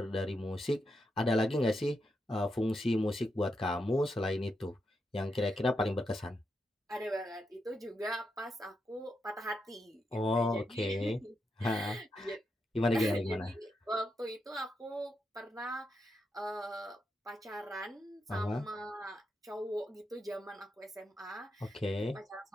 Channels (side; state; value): both; normal; correlation 0.84